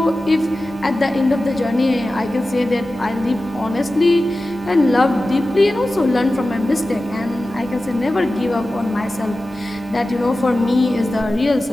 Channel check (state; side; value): normal; both; correlation 0.95